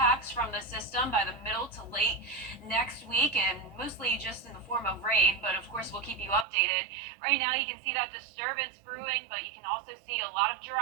from the system by the middle to late next week, and mostly just in the form of rain, but of course we'll keep you updated. Right now you can see that disturbance brewing, but you can also see a lot of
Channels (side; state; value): left; drops out; at 6.5 s